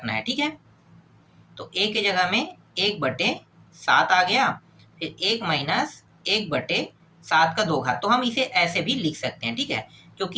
है। ठीक है, तो a के जगह में 1/7 आ गया, फिर 1 माइनस 1/7 का 2 घात। तो हम इसे ऐसे भी लिख सकते हैं। ठीक है,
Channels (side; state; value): both; identical; correlation 1.00